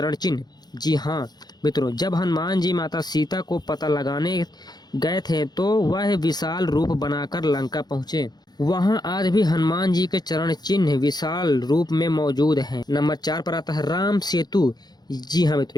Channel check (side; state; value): right; late; 0.20 ms